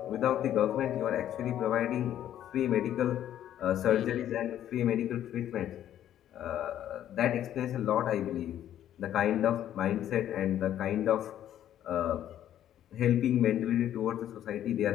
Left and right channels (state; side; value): quieter; right; 11.3 dB